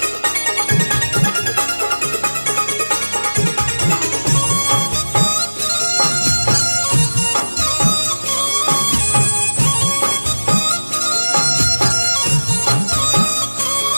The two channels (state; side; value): inverted; both; correlation -1.00